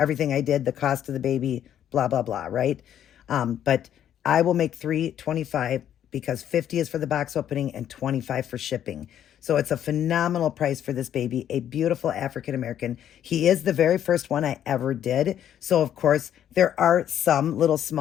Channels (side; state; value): right; quieter; 10.3 dB